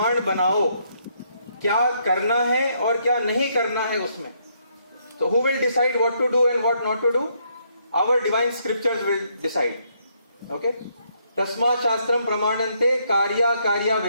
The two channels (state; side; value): inverted; both; correlation -0.73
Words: बनाओ, क्या करना है और क्या नहीं करना है उसमें. So who will decide what to do and what not to do? Our divine scriptures will decide. Okay? तस्मा शास्त्रम प्रमाणन्ते कार्या कार्या